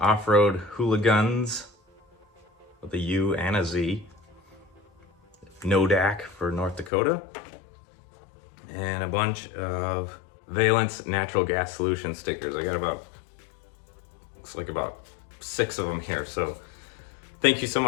Hooligans with a U and a Z. NODAC for North Dakota. And a bunch of Valence Natural Gas Solution stickers. I got looks like about 6 of them here. So thank you so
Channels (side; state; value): right; drops out; at 6.9 s